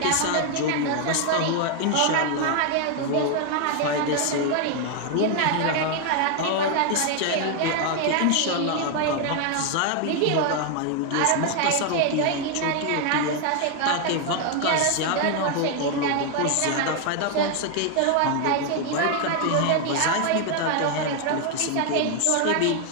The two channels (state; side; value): different; both; correlation 0.00